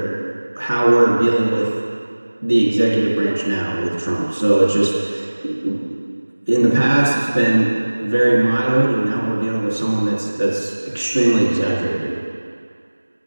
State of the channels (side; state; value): both; inverted; correlation -1.00